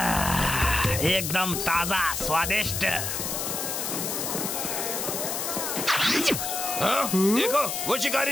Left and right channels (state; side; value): noise; left; hiss, 3 dB below the sound